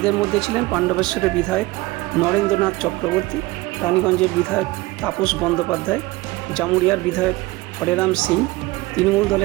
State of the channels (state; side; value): quieter; left; 20.3 dB